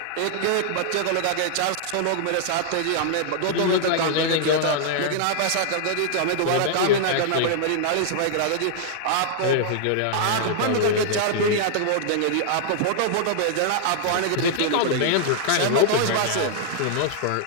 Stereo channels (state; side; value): different; both; correlation -0.01